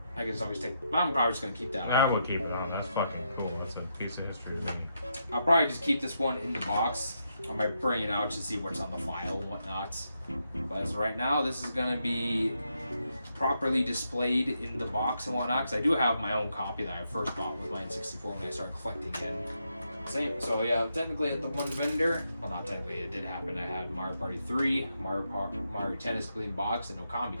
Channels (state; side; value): inverted; both; correlation -0.81